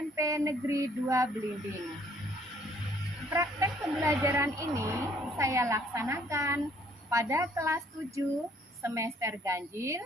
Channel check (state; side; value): normal; both; correlation 0.62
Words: Negeri 2 Blimbing. Praktek pembelajaran ini saya laksanakan pada kelas 7 semester ganjil